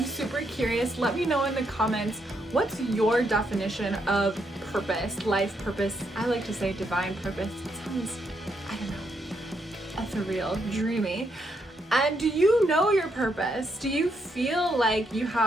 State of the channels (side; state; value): both; normal; correlation 0.77